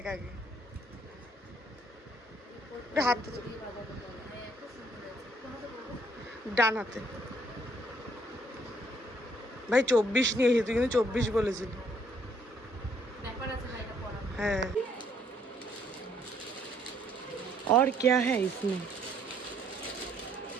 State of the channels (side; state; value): both; normal; correlation 0.66